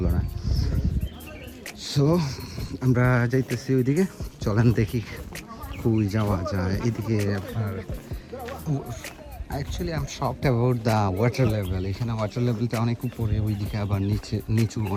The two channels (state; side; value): identical; both; correlation 1.00